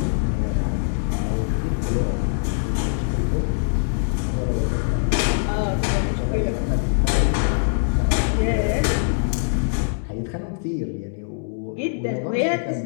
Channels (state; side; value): silent; right; digital silence